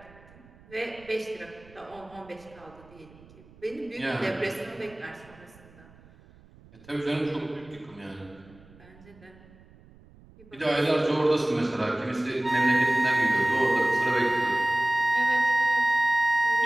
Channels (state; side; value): noise; right; rumble, 25 dB below the sound